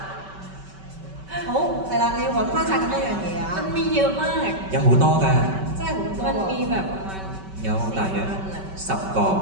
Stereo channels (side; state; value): left; late; 5.2 ms